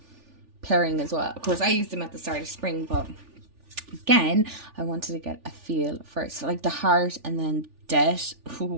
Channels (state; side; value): late; left; 3.4 ms